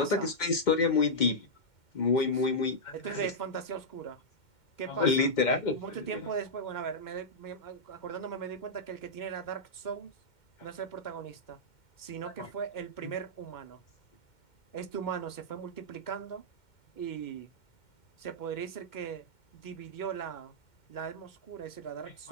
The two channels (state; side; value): late; right; 2.1 ms